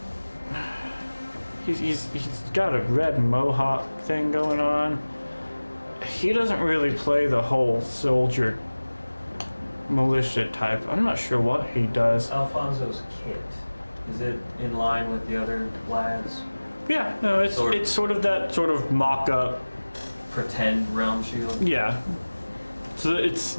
He's got a red mohawk thing going on. He doesn't really play the whole soldier militia type. I'm not sure what he does. Alfonso's kit, is it in line with the other lads? Yeah, no, it's sort of that sort of mock-up. Pretend realm shield? Yeah. So it's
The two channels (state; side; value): inverted; both; correlation -1.00